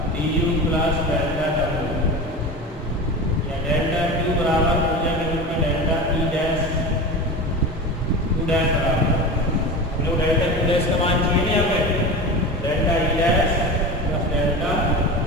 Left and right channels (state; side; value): normal; both; correlation 0.29